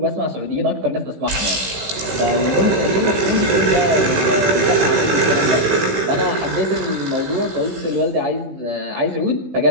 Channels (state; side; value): late; left; 15 ms